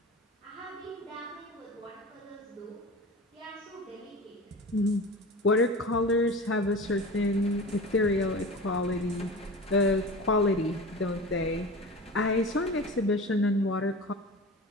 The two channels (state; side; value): normal; both; correlation 0.33